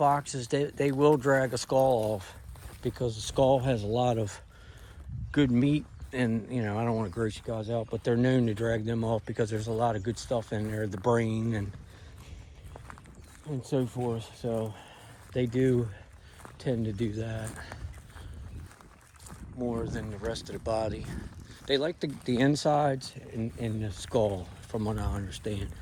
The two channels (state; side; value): identical; both; correlation 1.00